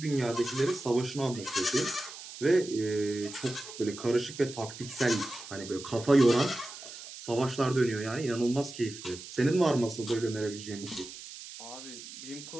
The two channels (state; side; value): noise; right; hiss, 13 dB below the sound